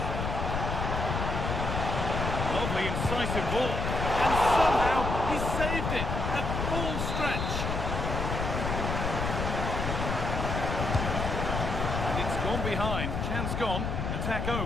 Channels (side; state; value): left; noise; rumble, 2 dB below the sound